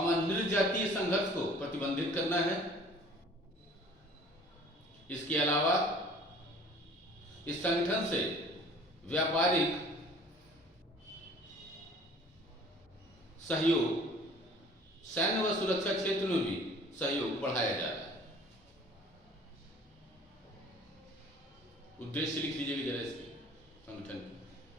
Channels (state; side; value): normal; both; correlation 0.50